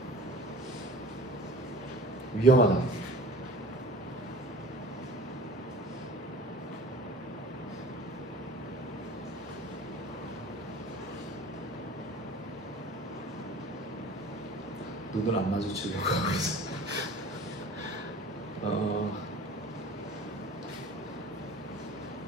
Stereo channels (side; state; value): both; normal; correlation 0.42